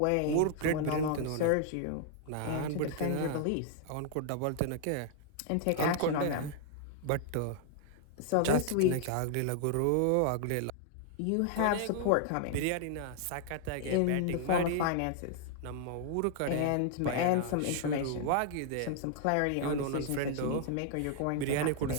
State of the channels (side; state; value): both; different; correlation -0.01